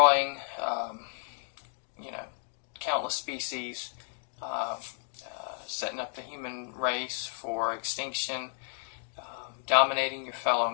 countless species, setting up the human race for extinction, dominating your fellow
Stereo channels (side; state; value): right; silent; 56 dB below the other